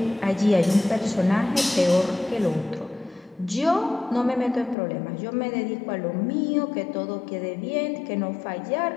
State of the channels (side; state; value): right; drops out; at 4.8 s